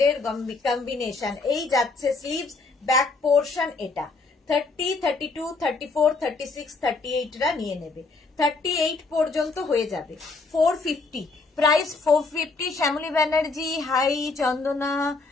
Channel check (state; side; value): quieter; right; 3.9 dB